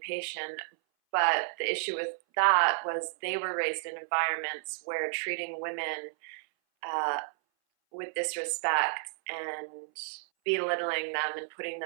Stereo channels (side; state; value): left; silent; 57 dB below the other